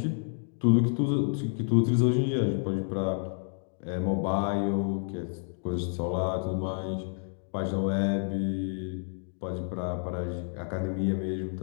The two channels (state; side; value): silent; right; 58 dB below the other